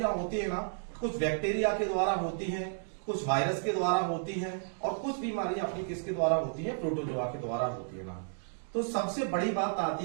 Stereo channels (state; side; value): silent; left; digital silence